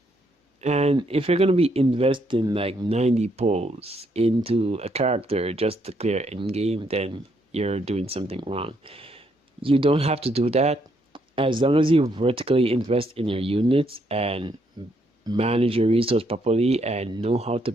And if you're gonna be investing like 90 pulls into a character just to clear end game, then you're doing something wrong. You don't have to do that. As long as you vertically invest in your units and manage your resource properly and know how to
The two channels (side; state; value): both; normal; correlation 0.73